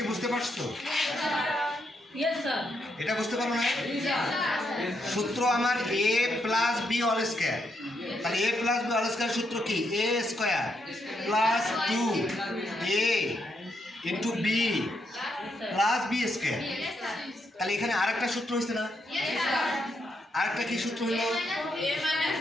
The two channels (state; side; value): normal; both; correlation 0.79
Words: বুঝতে পারছো? এটা বুঝতে পারো না? সূত্র আমার A plus B all square. তাহলে A plus B all square সূত্র কি? A square plus 2 A into B plus B square. তাহলে এখানে আরেকটা সূত্র হয়েছে না? আরেকটা কি সূত্র হলো? এ